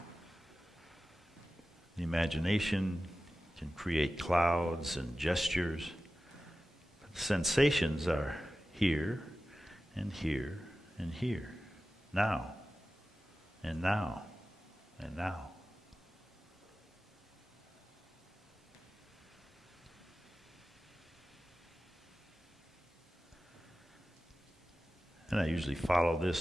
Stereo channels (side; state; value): both; normal; correlation 0.94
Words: The imagination can create clouds and gestures. But the sensations are here and here and here. Now and now and now. And I usually follow